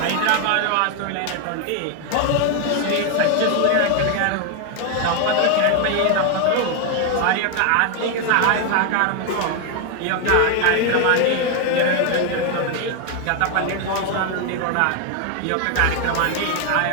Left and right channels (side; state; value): both; different; correlation 0.01